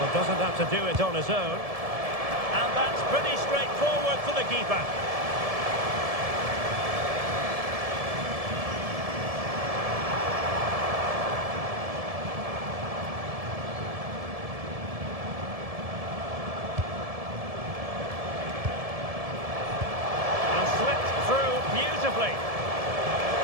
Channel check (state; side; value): late; left; 1.7 ms